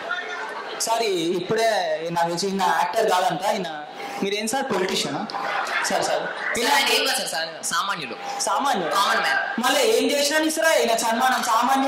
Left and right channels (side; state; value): both; identical; correlation 1.00